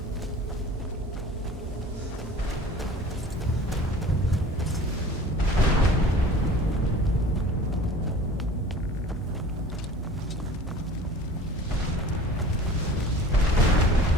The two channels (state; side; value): normal; both; correlation 0.44